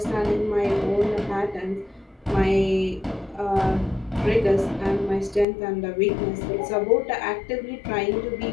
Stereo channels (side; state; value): right; drops out; at 5.5 s